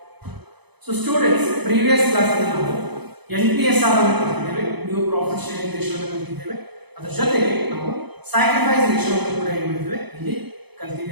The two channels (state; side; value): late; left; 0.99 ms